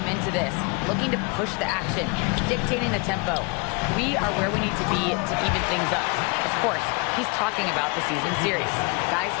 into this, looking to push the action, dictating the tempo. We are where we need to be to even things up." Of course, he's talking about the season series. Guys,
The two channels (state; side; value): quieter; right; 30.9 dB